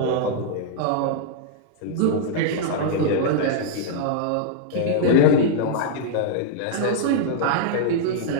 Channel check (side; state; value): both; different; correlation -0.01